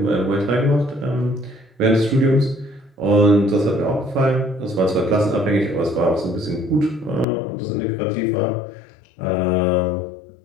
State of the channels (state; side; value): drops out; right; at 7.2 s